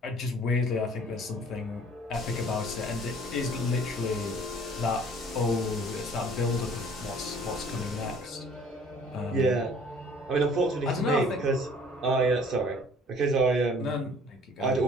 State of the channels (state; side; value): normal; both; correlation 0.53